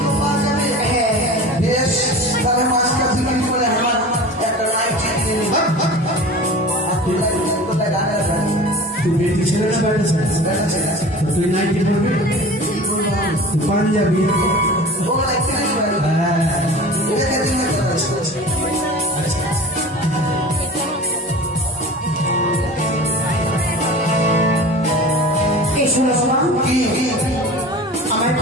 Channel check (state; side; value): normal; both; correlation 0.37